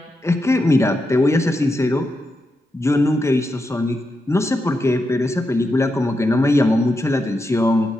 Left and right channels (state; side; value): normal; both; correlation 0.86